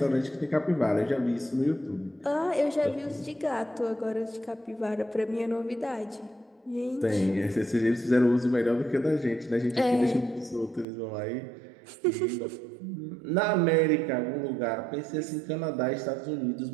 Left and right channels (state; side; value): drops out; left; at 10.9 s